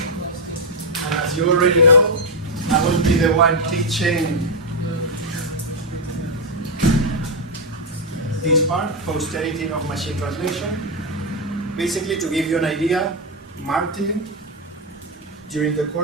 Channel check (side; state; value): both; normal; correlation 0.02